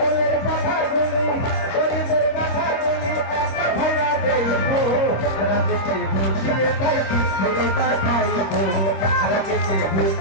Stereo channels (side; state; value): right; late; 26 ms